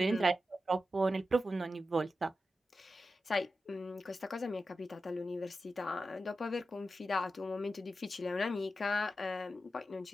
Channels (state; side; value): normal; both; correlation 0.91